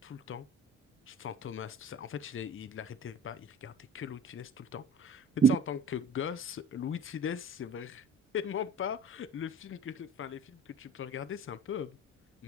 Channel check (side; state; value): both; normal; correlation 0.42